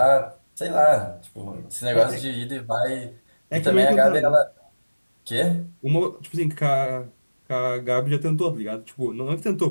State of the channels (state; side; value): inverted; both; correlation -1.00